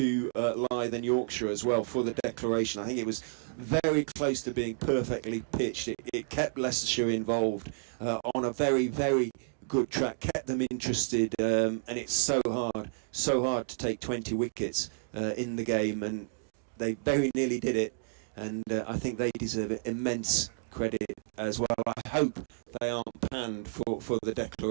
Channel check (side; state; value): left; silent; digital silence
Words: Leith and Yorkshire as well for the declaration. I think it was very close to being perfectly pitched. It kept Leicestershire involved on a very, very, good track, kept them interested, and it's so hard to take 20 wickets in the game, and they very nearly did it, and I think they deserve immense credit as well. I hope they aren't panned for the